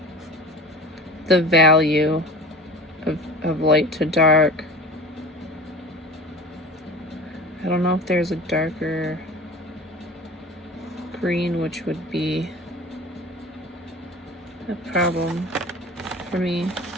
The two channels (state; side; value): normal; both; correlation 0.37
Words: the value of light to dark. I don't know if there's a darker green, which would be a problem for me.